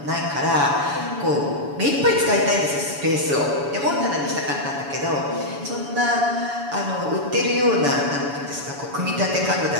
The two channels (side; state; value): left; late; 7.0 ms